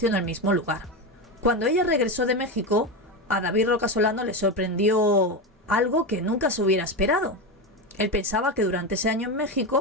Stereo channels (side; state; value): both; normal; correlation 0.16